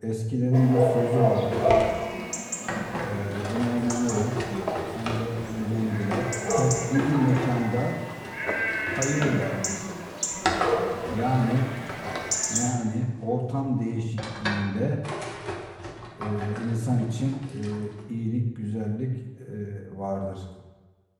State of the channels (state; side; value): identical; both; correlation 1.00